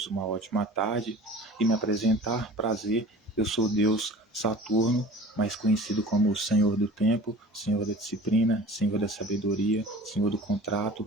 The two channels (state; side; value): normal; both; correlation 0.42